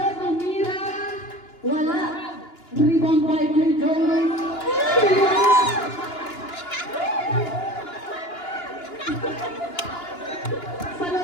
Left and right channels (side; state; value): right; late; 2.9 ms